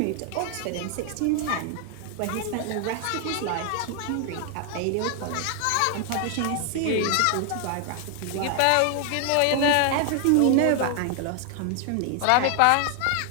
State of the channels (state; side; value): different; both; correlation 0.00